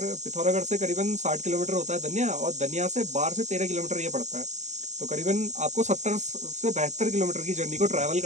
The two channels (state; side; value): late; left; 0.34 ms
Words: पिथौरागढ़ से करीबन 60 किलोमीटर होता है धनिया, और धनिया से 12 से 13 किलोमीटर ये पड़ता है। तो करीबन आपको 70 से 72 किलोमीटर की जर्नी को ट्रैवल